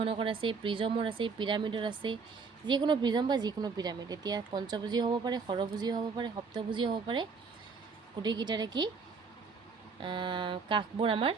আছে, প্ৰিজমৰ আছে, পিৰামিডৰ আছে। যিকোনো প্ৰিজম বা যিকোনো পিৰামিড। এতিয়া পঞ্চভুজীয় হ'ব পাৰে, ষড়ভুজীয় হ'ব পাৰে, সপ্তভুজীয় হ'ব পাৰে। গোটেইকেইটাৰে কি কাষবোৰ আমাৰ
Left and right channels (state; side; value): quieter; left; 5.0 dB